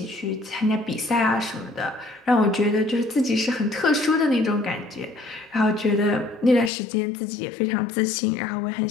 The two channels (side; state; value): right; drops out; at 6.7 s